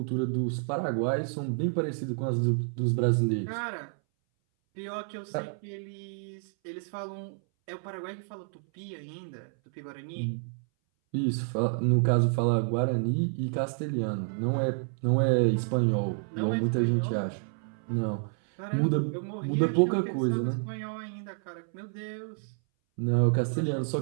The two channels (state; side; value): silent; left; 58 dB below the other